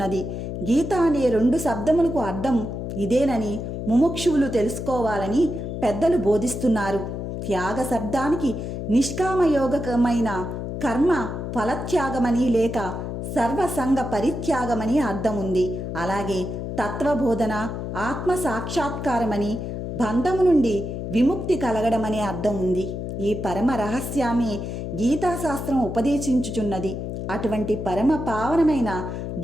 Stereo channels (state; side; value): noise; left; hum, 5 dB below the sound